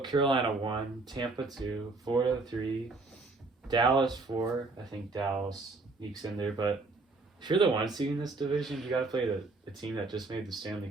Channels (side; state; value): left; quieter; 3.5 dB